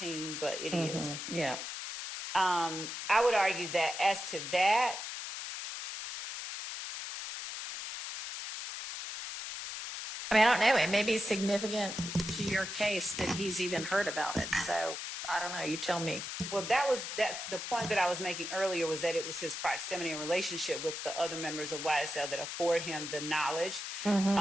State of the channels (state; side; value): noise; left; hiss, 6 dB below the sound